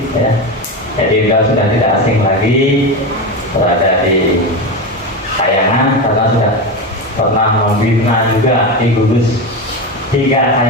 ya. Jadi beliau sudah tidak asing lagi berada di Kayangan karena sudah pernah membina juga di gugus tiga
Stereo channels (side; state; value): both; normal; correlation 0.18